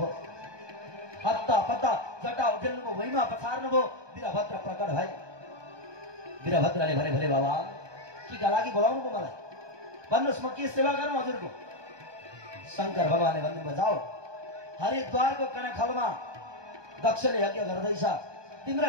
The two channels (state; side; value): late; left; 1.2 ms